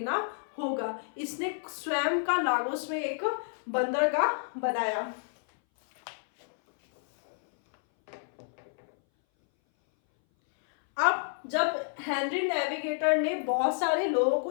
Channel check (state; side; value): silent; right; 58 dB below the other